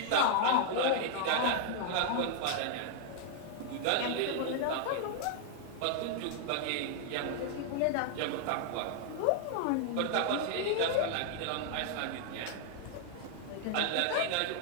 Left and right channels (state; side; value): different; both; correlation 0.00